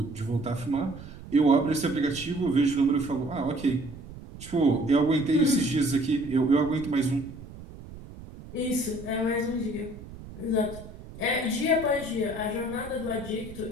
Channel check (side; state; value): right; noise; rumble, 15 dB below the sound